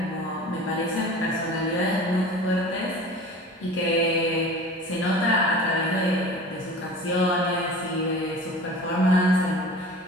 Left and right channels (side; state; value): both; normal; correlation 0.39